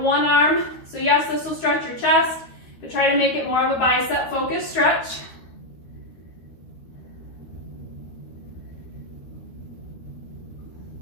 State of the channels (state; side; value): late; right; 13 ms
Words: one arm. So yes, this will stretch your chest, but try to make it more of a bicep focused stretch.